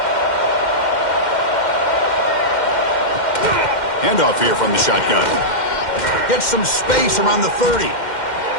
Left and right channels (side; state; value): right; late; 2.1 ms